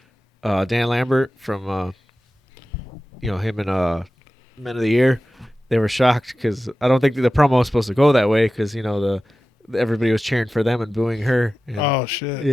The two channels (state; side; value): normal; both; correlation 0.95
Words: Dan Lambert from him and Men of the Year, they were shocked because I don't think the promo was supposed to go that way because everybody was cheering for them and booing her. And oh shit!